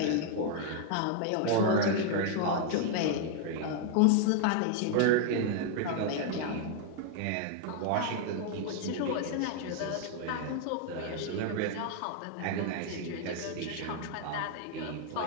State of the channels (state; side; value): different; both; correlation 0.00